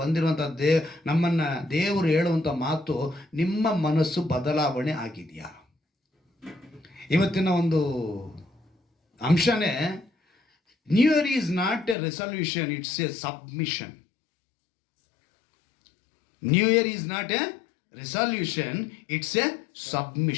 ಬಂದಿರುವಂಥ ನಮ್ಮನ್ನು ದೇವರು ಹೇಳುವಂಥ ಮಾತು, ನಿಮ್ಮ ಮನಸ್ಸು ಬದಲಾವಣೆ ಆಗಿದೆಯಾ? ಇವತ್ತಿನ ಒಂದು ಅಂಶನೇ, new year is not a resolution, it's a submission. New year is not a resolution, it's a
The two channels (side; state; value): right; drops out; at 12.0 s